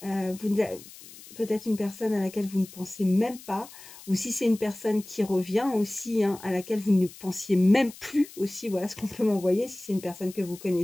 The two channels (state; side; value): noise; left; hiss, 18 dB below the sound